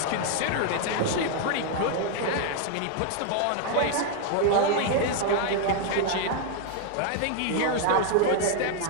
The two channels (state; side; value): different; both; correlation 0.00